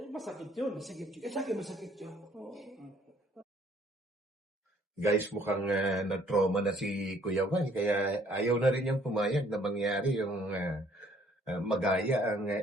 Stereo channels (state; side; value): normal; both; correlation 0.61